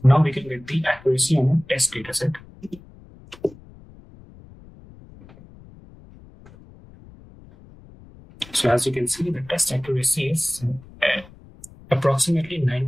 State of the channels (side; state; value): left; noise; rumble, 22 dB below the sound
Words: accuracy on a test dataset. So as you can see, the test accuracy is approximately